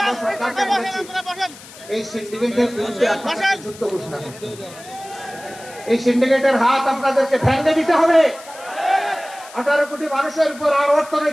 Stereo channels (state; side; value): noise; left; hiss, 18 dB below the sound